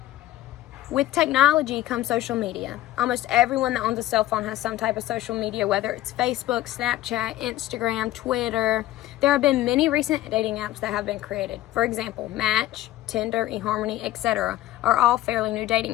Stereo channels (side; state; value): right; quieter; 15.1 dB